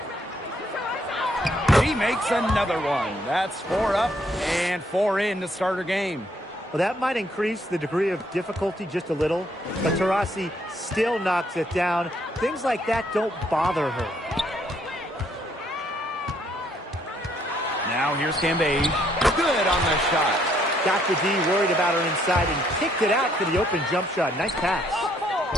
He makes another one. That's 4 up and 4 in to start her game. Well, that might increase the degree of difficulty just a little, but Taurasi still knocks it down. Things like that don't bother her. Now here's Cambage. Good on the shot. Got the D worried about her inside and kicked it out for the open jump shot. Nice pass.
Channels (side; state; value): both; normal; correlation 0.69